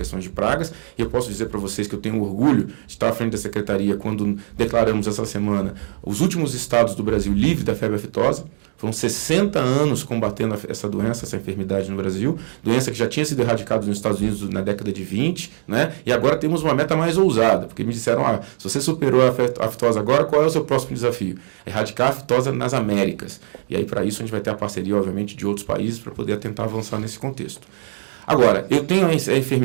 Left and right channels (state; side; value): silent; left; 63 dB below the other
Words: de pragas. E eu posso dizer para vocês que eu tenho orgulho de estar à frente da secretaria quando declaramos essa semana os últimos estados do Brasil livres da febre aftosa. Foram 60 anos combatendo essa doença, essa enfermidade no Brasil, doença que já tinha sido erradicada nos Estados Unidos na década de 20, né? E agora temos uma meta mais ousada, porque me disseram, se você superou a aftosa agora, qual é o seu próximo desafio? Erradicar a aftosa nas Américas. E aí, para isso, a gente vai ter a parceria, obviamente, de outros países para poder tentar avançar nesse contexto. Agora, eu tenho a